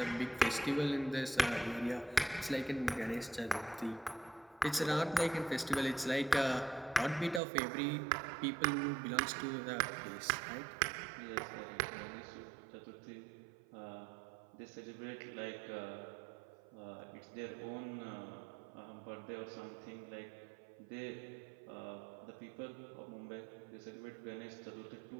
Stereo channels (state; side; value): drops out; left; at 7.4 s